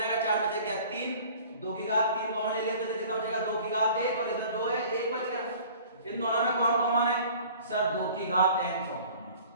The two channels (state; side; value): inverted; both; correlation -0.48